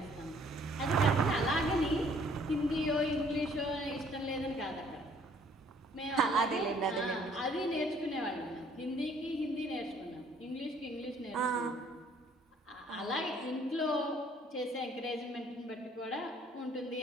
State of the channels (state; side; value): normal; both; correlation 0.60